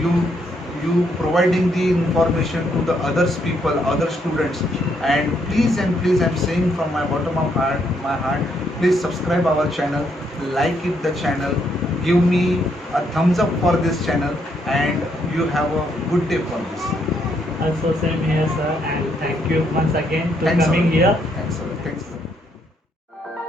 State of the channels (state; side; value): normal; both; correlation 0.74